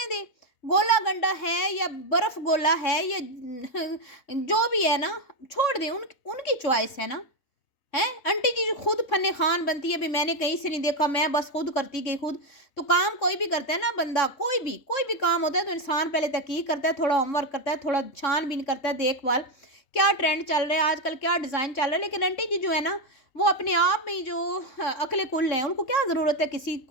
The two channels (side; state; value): right; late; 3.5 ms